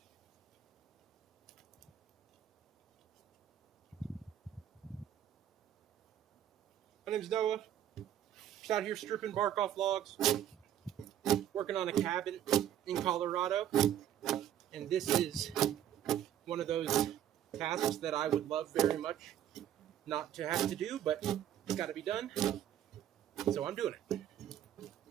My name's Noah. Just out here stripping bark off logs, working on a cabin in Colorado. And this is one of those tasks that I would love very much not to have to do, but it's got to be done. So I'm doing it.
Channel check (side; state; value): left; quieter; 10.9 dB